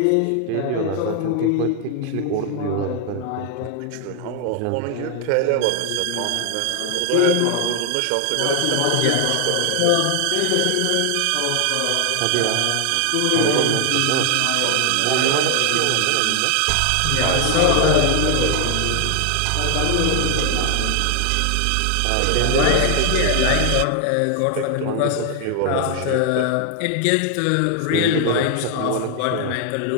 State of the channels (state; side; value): different; both; correlation 0.00